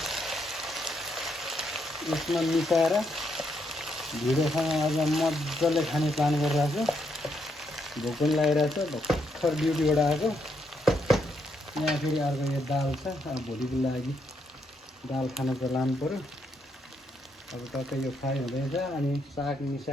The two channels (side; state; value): both; normal; correlation 0.77